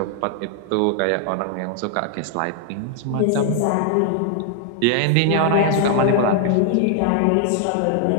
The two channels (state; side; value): different; both; correlation 0.00